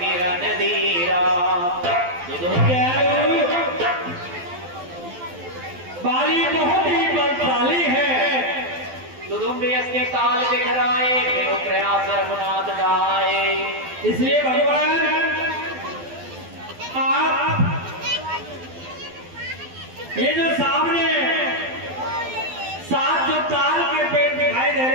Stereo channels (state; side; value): late; left; 12 ms